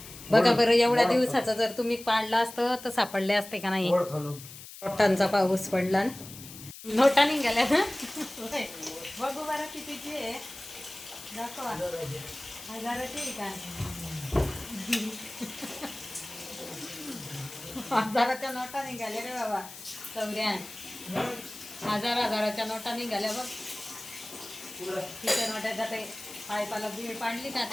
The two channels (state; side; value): noise; left; hiss, 14 dB below the sound